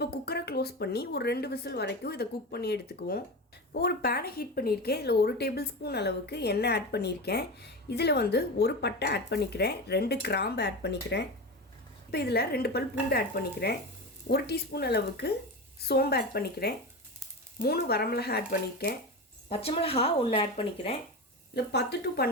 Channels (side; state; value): both; normal; correlation 0.23